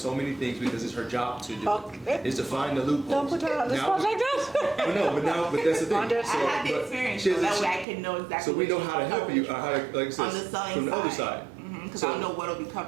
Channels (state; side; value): drops out; left; at 7.9 s